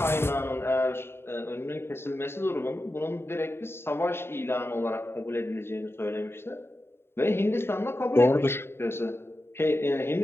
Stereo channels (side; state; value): right; late; 0.11 ms